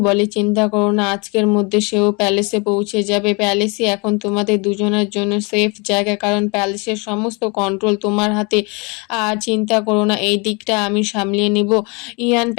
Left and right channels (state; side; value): quieter; right; 30.1 dB